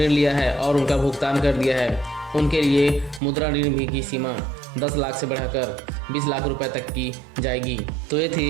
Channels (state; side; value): drops out; left; at 3.2 s